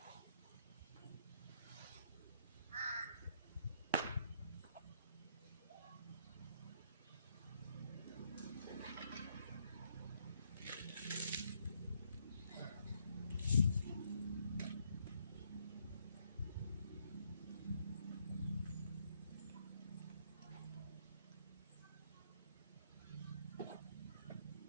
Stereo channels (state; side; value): inverted; both; correlation -0.72